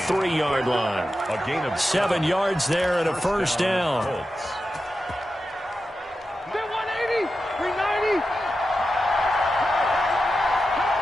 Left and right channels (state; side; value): normal; both; correlation 0.91